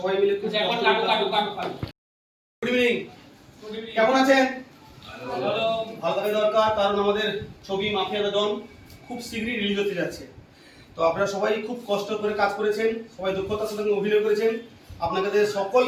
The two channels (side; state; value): both; identical; correlation 1.00